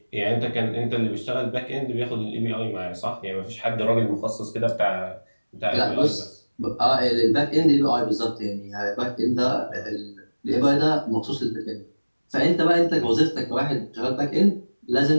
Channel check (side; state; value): both; inverted; correlation -1.00